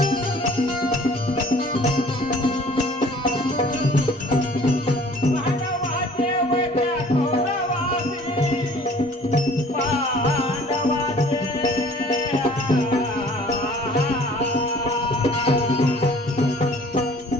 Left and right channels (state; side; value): normal; both; correlation 0.52